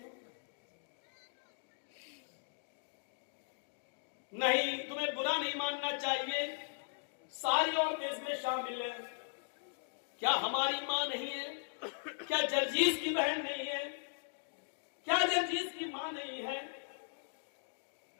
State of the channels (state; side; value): silent; right; digital silence